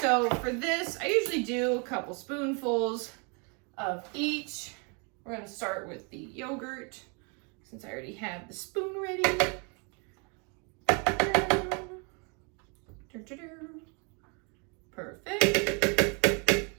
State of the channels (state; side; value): quieter; left; 34.6 dB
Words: So for this, I usually do a couple spoonfuls of each. We're gonna start with the yogurt, since I already have the spoon ready. Perfect.